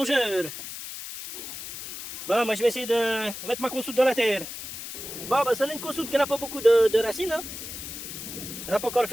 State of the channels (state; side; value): noise; left; hiss, 9 dB below the sound